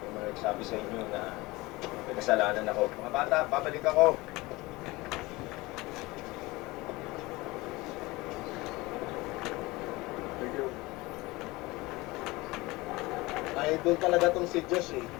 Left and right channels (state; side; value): quieter; right; 21.6 dB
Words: mga nagsabi sa inyo na may kasalanan ako. Mga bata, babalik ako. Idol talaga tong si Josh eh.